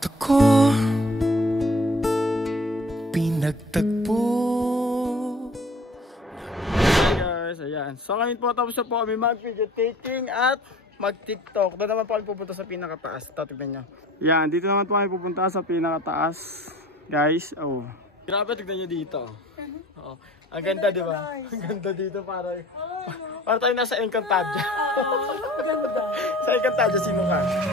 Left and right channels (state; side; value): normal; both; correlation 0.48